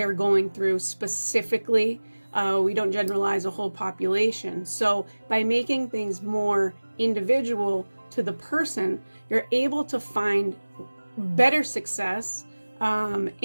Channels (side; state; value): both; inverted; correlation -1.00